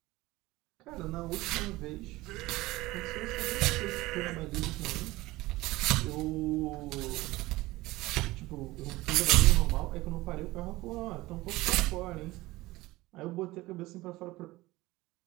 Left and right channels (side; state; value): left; quieter; 19.3 dB